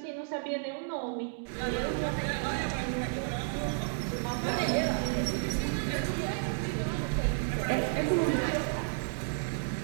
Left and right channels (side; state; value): left; silent; digital silence